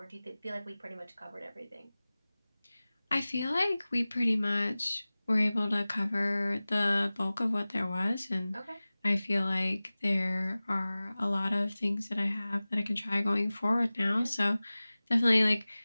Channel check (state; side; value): inverted; both; correlation -0.98